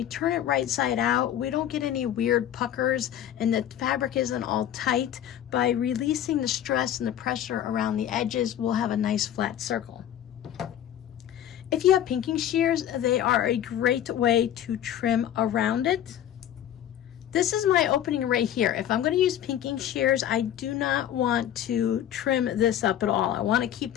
turn it right side out, we don't get any weird puckers and the fabric isn't all tight. By releasing the stress and the pressure around the edges, we'll have a nice flat circle. If you have pinking shears, they are a great way to trim around it. This is my opening right here. If I'm going to use pinking shears, I do not want to trim this up at all. I want to keep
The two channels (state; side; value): quieter; right; 10.9 dB